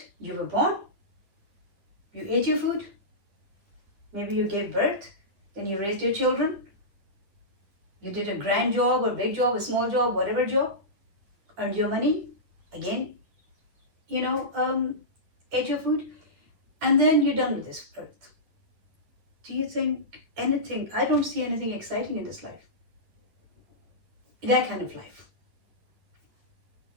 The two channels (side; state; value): left; late; 9.7 ms